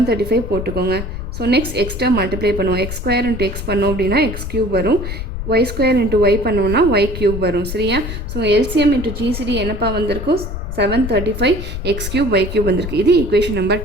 போட்டுக்கோங்க. So next X term multiply பண்ணுவோம். x² × x பண்ணோம் அப்படின்னா x³ வரும், y² × y பண்ணோம்னா y³ வரும். சரியா, ஸோ எல்சிஎம் இன்ட்டு ஜிசிடி என்னப்பா வந்திருக்கும்? 735 x³ y³ வந்திருக்கு. இது ஈக்குவேஷன் நம்பர்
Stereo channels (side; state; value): left; noise; rumble, 7 dB below the sound